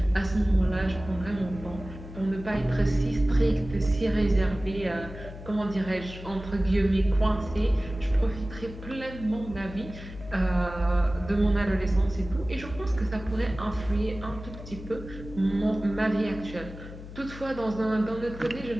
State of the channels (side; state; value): left; noise; hum, 13 dB below the sound